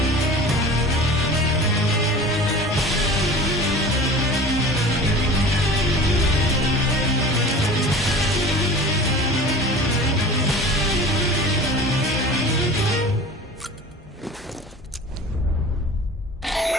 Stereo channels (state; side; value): normal; both; correlation 0.38